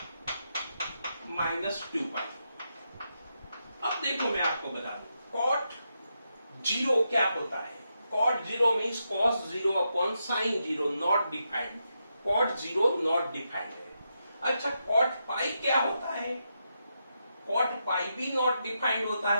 -2 पाई। अब देखो मैं आपको बता दूं, कॉट जीरो क्या होता है। Cot zero means cos zero upon sine zero, not defined. Cot zero not defined है। अच्छा, कॉट पाई क्या होता है? कॉट पाई भी नॉट डिफाइंड होता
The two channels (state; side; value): inverted; both; correlation -0.84